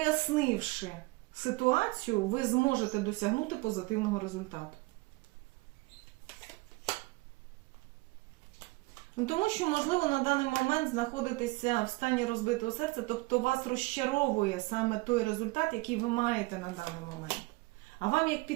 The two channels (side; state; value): left; quieter; 23.4 dB